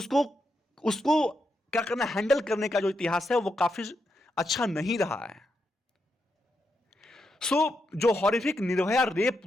क्या करना, हैंडल करने का जो इतिहास है वो काफी अच्छा नहीं रहा है। जो हॉरिफिक निर्भया रेप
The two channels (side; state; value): both; normal; correlation 0.83